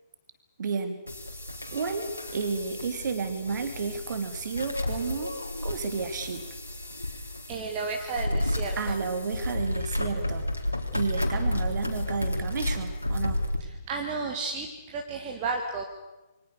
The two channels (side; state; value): both; inverted; correlation -0.76